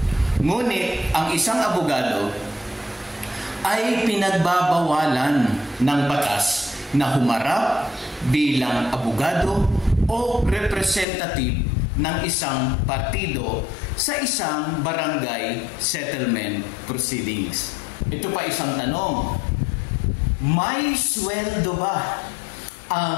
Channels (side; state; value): right; drops out; at 11.1 s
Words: Ngunit ang isang abogado ay pinagbabawalan ng batas na humarap bilang abogado o representative ng isang partido sa isang barangay settlement proceedings. Ito pa isang tanong, may sweldo ba